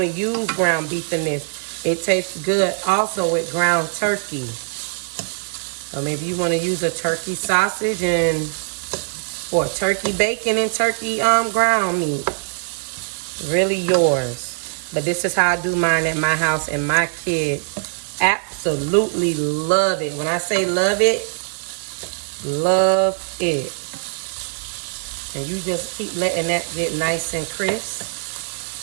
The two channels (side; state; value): left; silent; digital silence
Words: to use ground beef in this. It tastes good also with ground turkey. Or maybe you want to use a turkey sausage or turkey bacon and turkey ground meat. Really yours. But this is how I do mine at my house, and my kids absolutely love it. When I say love it, love it. And you just keep letting that get nice and